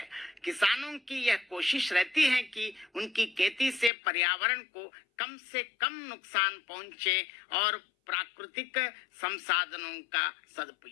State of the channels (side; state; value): right; drops out; at 3.9 s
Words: किसानों की यह कोशिश रहती है कि उनकी खेती से पर्यावरण को कम से कम नुकसान पहुंचे और प्राकृतिक संसाधनों का